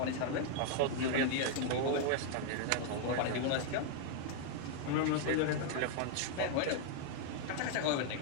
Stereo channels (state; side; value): different; both; correlation -0.01